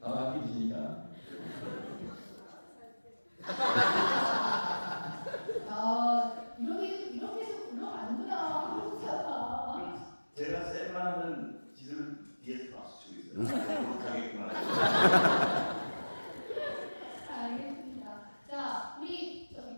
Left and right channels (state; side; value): inverted; both; correlation -1.00